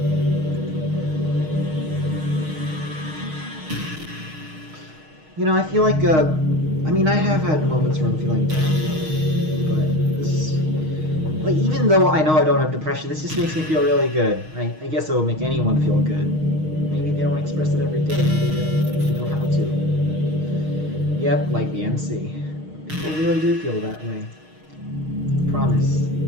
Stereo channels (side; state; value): left; late; 6.4 ms